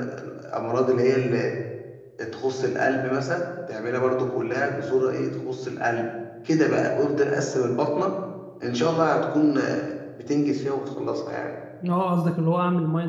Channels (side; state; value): both; identical; correlation 1.00